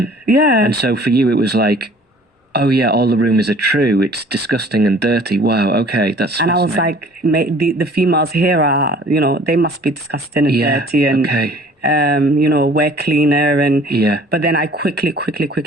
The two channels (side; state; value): both; normal; correlation 0.51